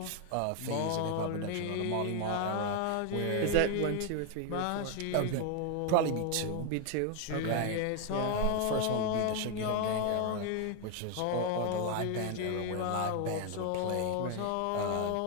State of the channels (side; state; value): both; different; correlation 0.01